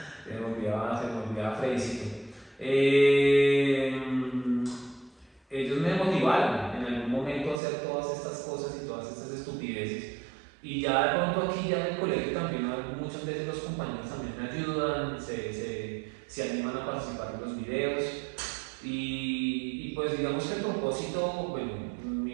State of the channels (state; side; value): drops out; left; at 7.6 s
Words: se me olvidaba Freddycito. Ellos me motivaron en algún momento a hacer todas estas cosas y todas estas estupideces. Y ya de pronto aquí ya en el colegio también muchas veces los compañeros también me ayudan, se animan a participar en los videos. Y pues digamos que el propósito, bueno,